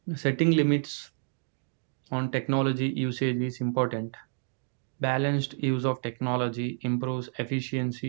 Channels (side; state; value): left; silent; digital silence